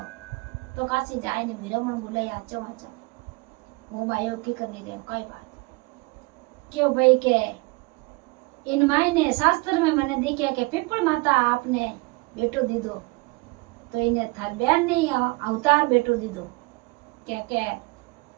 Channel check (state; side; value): quieter; left; 25.7 dB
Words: तो काशी जाए ने विरमण बुलाई आचो होम आयो की करनी रे कोई बात क्यों भाई के इन मायने शास्त्र में मैंने देखा कि पीपल माता आपने बेटो दीदो तो इन्हें थार बहन ने अवतार बेटो दीदो क्या क्या